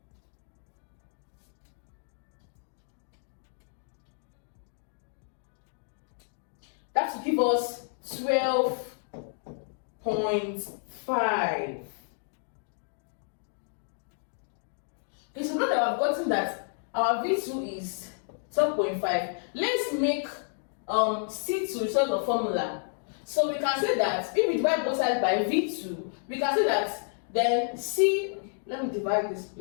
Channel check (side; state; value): right; silent; 58 dB below the other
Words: That will give us 12.5. Okay, so now that I've gotten that our V2 is 12.5, let's make C2 result of formula. So we can say that if we divide both sides by V2, we can say that then let me divide this